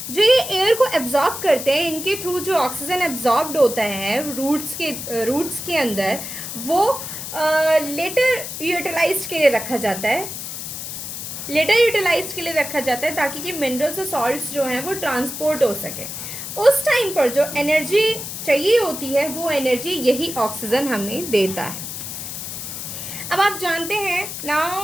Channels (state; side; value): noise; left; hiss, 7 dB below the sound